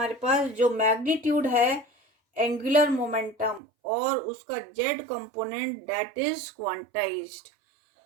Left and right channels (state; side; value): drops out; left; at 3.6 s